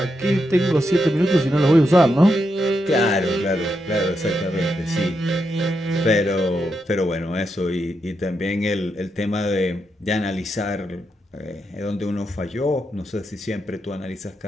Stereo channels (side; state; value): both; normal; correlation 0.84